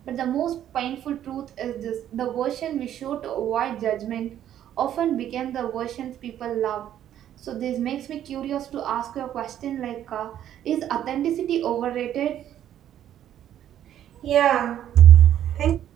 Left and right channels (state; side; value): quieter; left; 11.0 dB